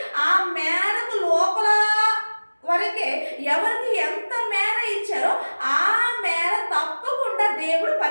ఆ మేరకు లోపల వరకే ఎవరికి ఎంత మేర ఇచ్చారో ఆ మేర తప్పకుండా దేవుడు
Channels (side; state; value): both; inverted; correlation -1.00